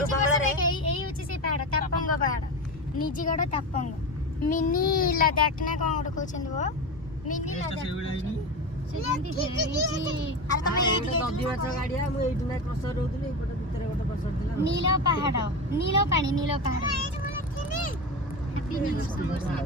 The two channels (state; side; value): normal; both; correlation 0.22